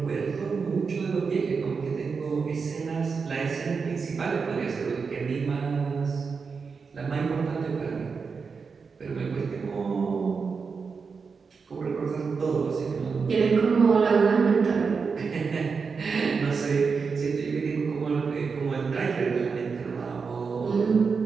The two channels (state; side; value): quieter; left; 5.2 dB